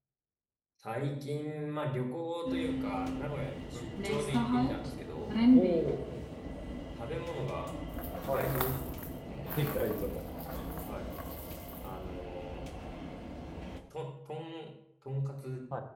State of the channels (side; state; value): both; identical; correlation 1.00